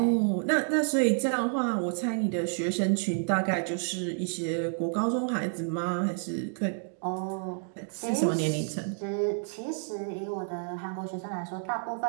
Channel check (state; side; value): silent; left; 58 dB below the other